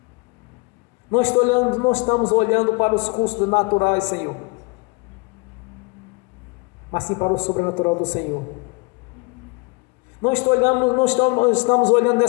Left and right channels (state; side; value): quieter; right; 29.4 dB